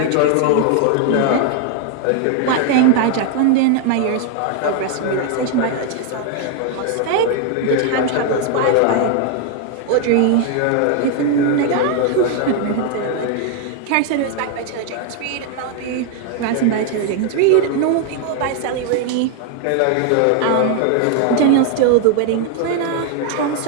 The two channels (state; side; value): different; both; correlation 0.00